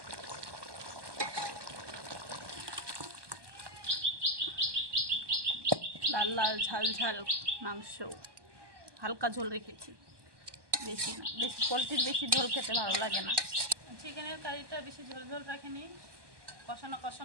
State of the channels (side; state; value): left; late; 1.2 ms